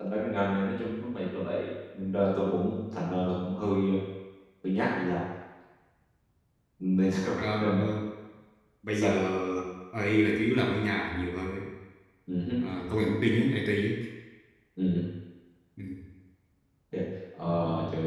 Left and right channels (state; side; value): identical; both; correlation 1.00